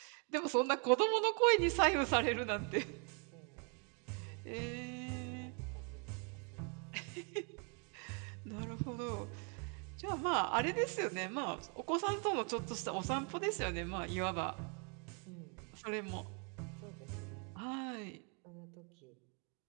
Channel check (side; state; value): left; quieter; 36.5 dB